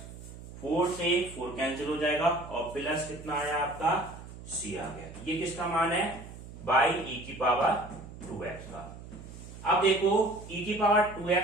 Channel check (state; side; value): noise; right; hum, 14 dB below the sound